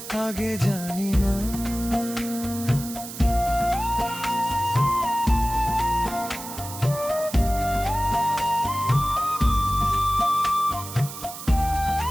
আগে জানি না।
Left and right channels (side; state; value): right; noise; hiss, 11 dB below the sound